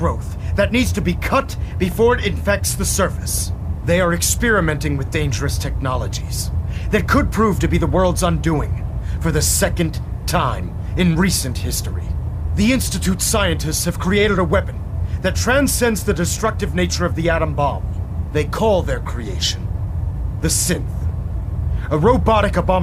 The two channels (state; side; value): identical; both; correlation 1.00